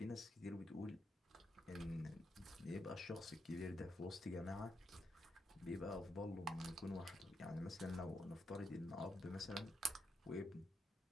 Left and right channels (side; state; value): both; normal; correlation 0.81